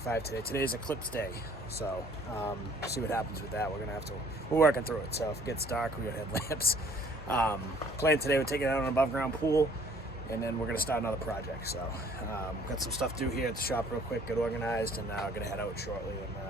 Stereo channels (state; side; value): normal; both; correlation 0.57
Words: today. Today's eclipse day, so see what happens with that. We're working through it. So if it gets dark, we got headlamps. Plan today, we're taking out an above ground pool, and then we're gonna start another project. So got some stuff to do here at the shop real quick, get organized, and I'm gonna head out shortly and